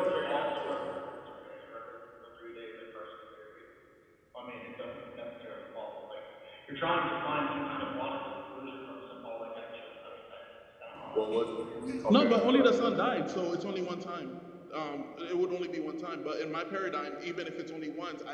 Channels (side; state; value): both; identical; correlation 1.00